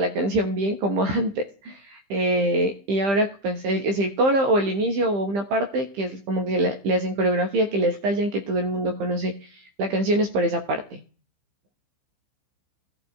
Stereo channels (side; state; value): left; late; 15 ms